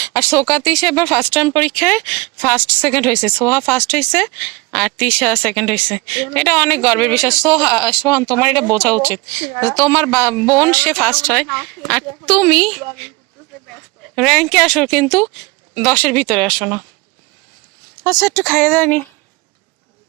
আর সোকা তিশা এবার ফার্স্ট টাইম পরীক্ষায় ফার্স্ট সেকেন্ড হয়েছে। সোহা ফার্স্ট হয়েছে আর তিশা সেকেন্ড হয়েছে। এটা অনেক গর্বের বিষয়। সোহান, তোমার এটা বোঝা উচিত, তোমার বোন সে ফার্স্ট হয় আর তুমি র্যাঙ্কে আসো, কিন্তু 10-এর ভিতরে আসো না। আচ্ছা, একটু খাইয়ে দেয়নি।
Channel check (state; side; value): quieter; left; 24.1 dB